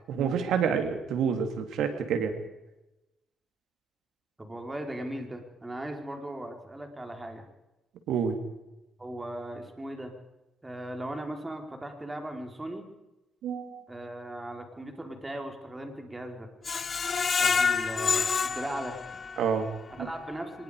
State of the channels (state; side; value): normal; both; correlation 0.72